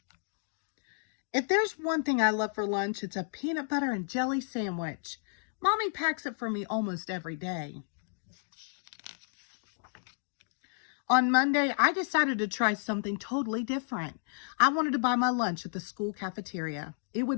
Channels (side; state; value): right; silent; digital silence